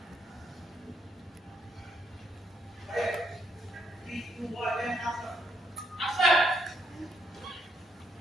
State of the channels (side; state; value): both; normal; correlation 0.75